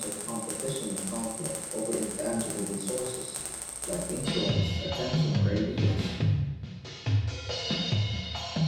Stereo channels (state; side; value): identical; both; correlation 1.00